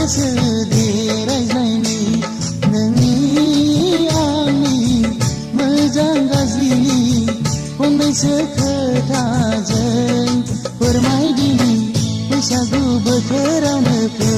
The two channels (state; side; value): identical; both; correlation 1.00